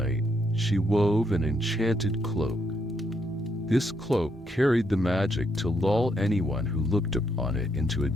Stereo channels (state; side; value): normal; both; correlation 0.76